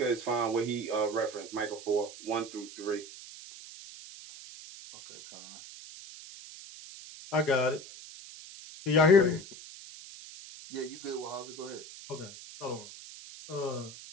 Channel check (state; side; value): noise; right; hiss, 15 dB below the sound